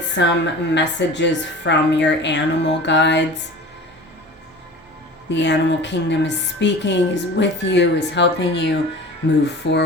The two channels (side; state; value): both; normal; correlation 0.39